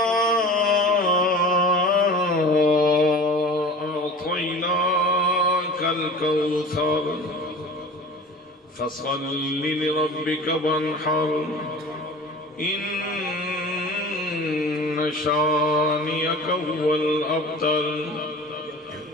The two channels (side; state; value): both; normal; correlation 0.39